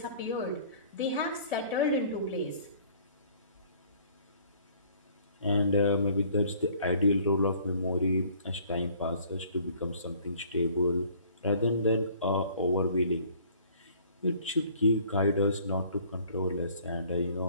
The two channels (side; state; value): both; inverted; correlation -0.55